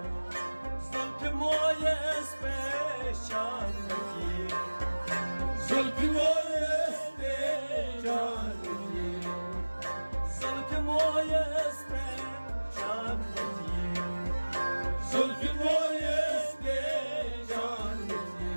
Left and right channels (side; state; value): both; inverted; correlation -1.00